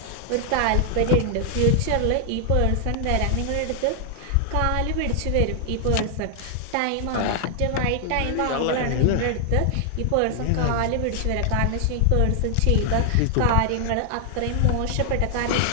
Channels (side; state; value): both; different; correlation 0.00